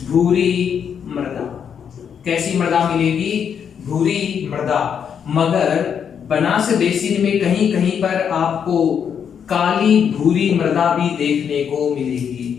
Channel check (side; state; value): right; quieter; 7.7 dB